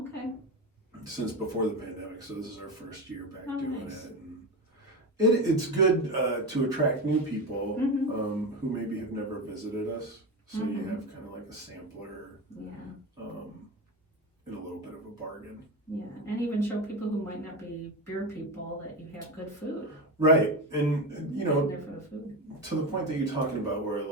Since before the pandemic, so this is our first year back doing nice. it. And it's good to attract new people who maybe have never visited us. So you have kind of like a sampler. And a little bit of a bargain. Yeah, and even show people who might not be beer people that you have good food. Right, and you know, there for the food. To the point that you're talking about, where a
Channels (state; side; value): normal; both; correlation 0.19